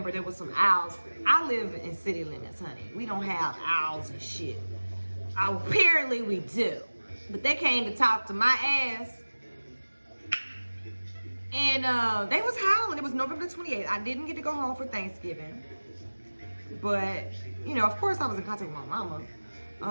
there was some owls. I live in city limits, honey. We don't have owls and shit. Apparently we do. But they came to talk to my ass. And they was howling. It was November 28th. I didn't get to go home for Thanksgiving. But, you know, of course I was in contact with my mama.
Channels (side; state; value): both; inverted; correlation -1.00